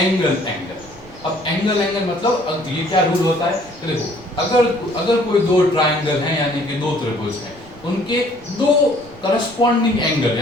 एंगल। अब एंगल मतलब अब ये क्या रूल होता है कि देखो अगर कोई दो ट्राइंगल हैं यानी कि दो त्रिभुज हैं, उनके दो करस्पॉन्डिंग एंगल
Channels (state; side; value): noise; right; rumble, 22 dB below the sound